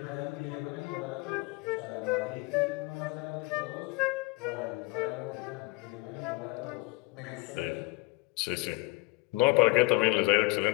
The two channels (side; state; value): right; quieter; 23.3 dB